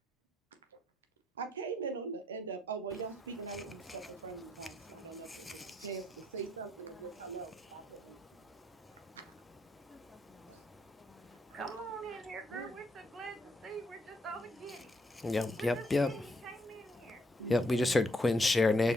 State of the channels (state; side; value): normal; both; correlation 0.75